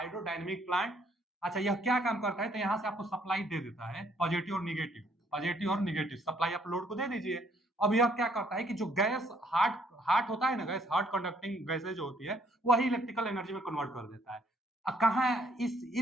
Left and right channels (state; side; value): normal; both; correlation 0.66